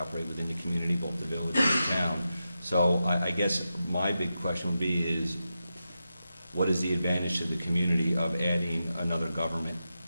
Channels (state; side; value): inverted; both; correlation -0.89